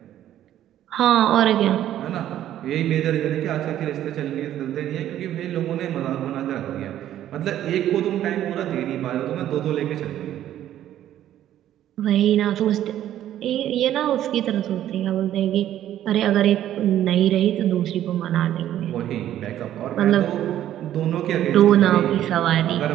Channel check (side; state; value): left; quieter; 12.0 dB